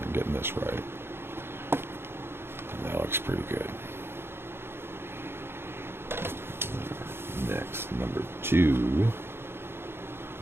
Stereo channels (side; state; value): left; late; 0.11 ms